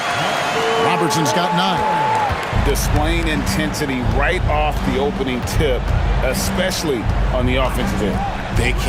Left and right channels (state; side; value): identical; both; correlation 1.00